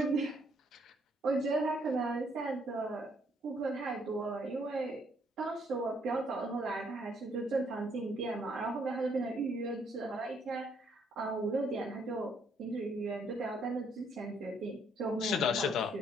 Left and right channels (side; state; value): both; normal; correlation 0.68